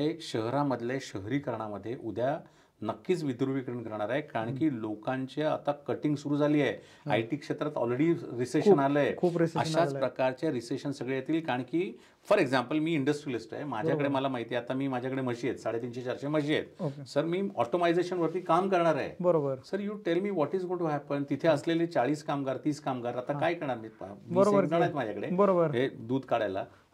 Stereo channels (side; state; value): both; identical; correlation 1.00